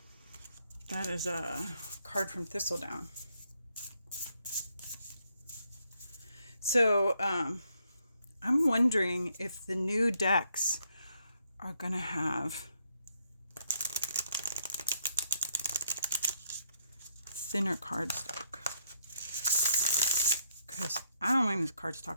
That is a card from Thistledown. So, I'm wondering if the new decks are going to have thinner cardstock. Because I don't mind this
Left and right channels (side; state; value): both; inverted; correlation -0.73